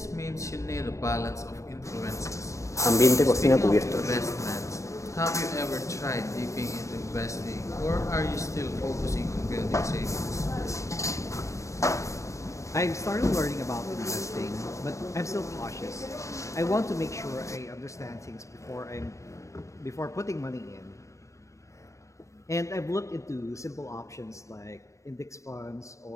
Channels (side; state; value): right; late; 0.15 ms